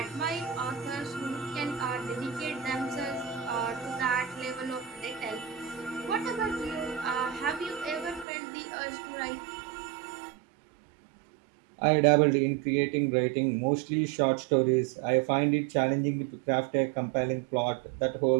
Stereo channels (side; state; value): left; drops out; at 8.2 s